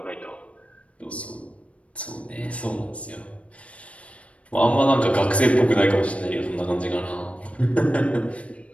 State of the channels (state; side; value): late; right; 0.063 ms